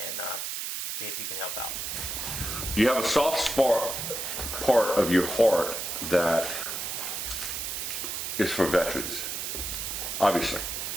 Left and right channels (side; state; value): right; noise; hiss, 4 dB below the sound